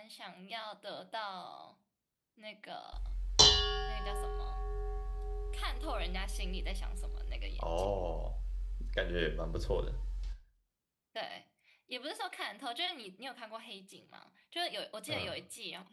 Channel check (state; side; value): identical; both; correlation 1.00